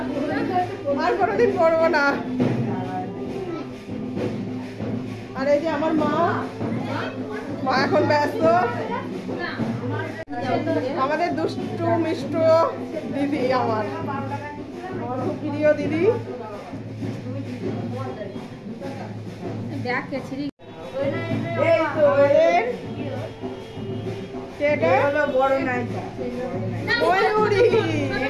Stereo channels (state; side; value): identical; both; correlation 1.00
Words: আর কোনোদিন পরবো না। আর এই যে আমার মা এখন ব্যস্ত, আমাদের দুষ্টু মিষ্টু দিদি, আমার খুব প্রিয় দিদি।